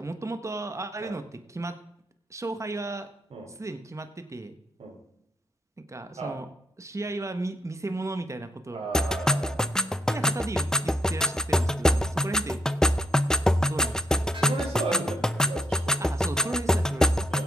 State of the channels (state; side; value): normal; both; correlation 0.77